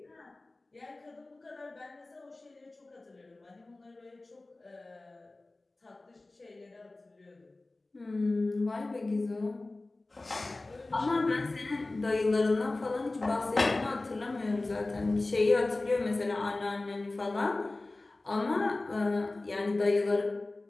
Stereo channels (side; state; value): right; quieter; 3.0 dB